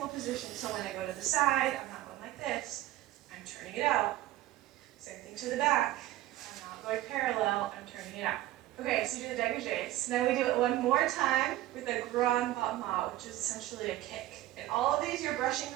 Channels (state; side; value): quieter; left; 15.4 dB